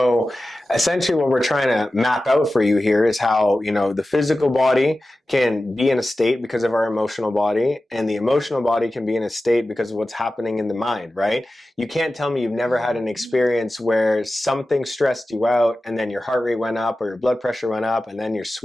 essentially what we're trying to map out for you here is how, the physical body can be in a state because of our emotional body, and the emotional body can be in a state because of what's happening in the mind, right? You can't tell me you've never had an experience where something stressed you out and then your heart rate went up or your blood pressure went up and then you're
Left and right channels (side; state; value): both; normal; correlation 0.94